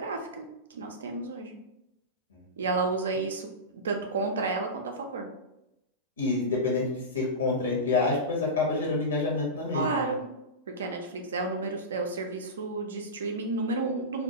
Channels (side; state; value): both; normal; correlation -0.18